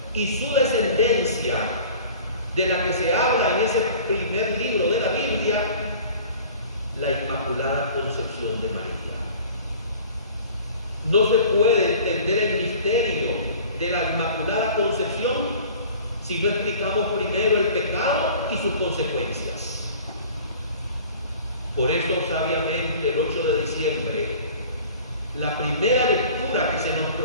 y su descendencia de la que se habla en ese primer libro de la Biblia, la Inmaculada Concepción de María. No se puede entender el misterio de la Inmaculada Concepción si no explicamos primero el pecado y sus consecuencias. Por eso, sabiamente, el 8 de diciembre, la primera lectura que se nos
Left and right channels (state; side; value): inverted; both; correlation -0.45